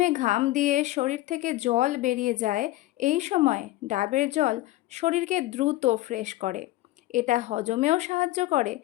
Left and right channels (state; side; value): quieter; right; 17.0 dB